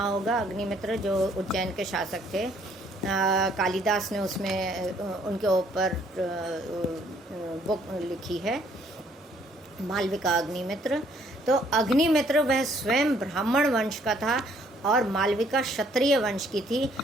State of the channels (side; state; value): both; normal; correlation 0.64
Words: होगा, अग्निमित्र जो उज्जैन के शासक थे, कालिदास ने उसमें उनके ऊपर बुक लिखी है, मालविका अग्निमित्र। तो अग्निमित्र वह स्वयं ब्राह्मण वंश का था और मालविका क्षत्रिय वंश की थी,